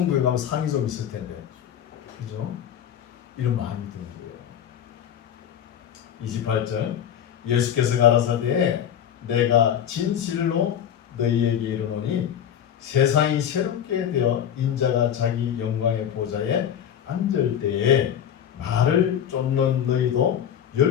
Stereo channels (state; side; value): quieter; right; 9.4 dB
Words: 가면 상이 좀 있을 텐데, 그죠? 이런 마음이 드는 거예요. 28절 예수께서 가라사대 내가 진실로 너희에게 이르노니 세상이 새롭게 되어 인자가 자기 영광의 보좌에 앉을 때에 나를 쫓는 너희도